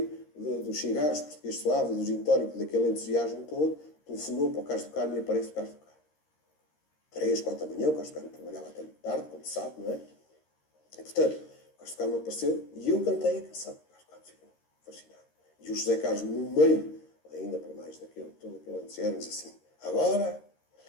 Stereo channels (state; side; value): late; right; 13 ms